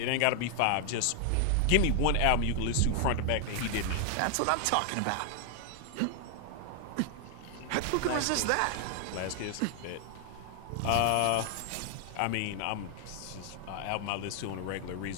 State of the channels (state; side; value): different; both; correlation 0.00